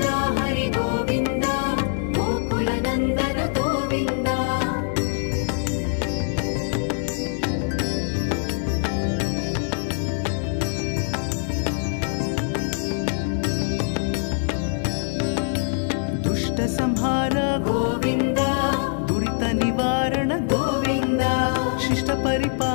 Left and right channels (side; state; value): right; silent; 63 dB below the other